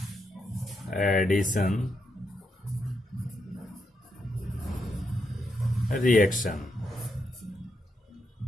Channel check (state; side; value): normal; both; correlation 0.81